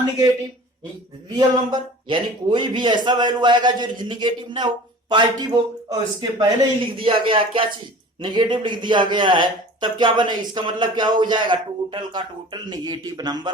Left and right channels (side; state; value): both; normal; correlation 0.42